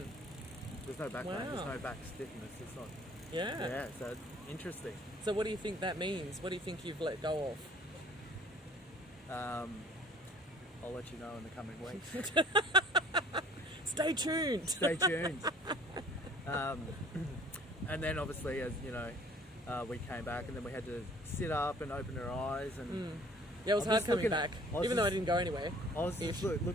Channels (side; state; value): both; normal; correlation 0.54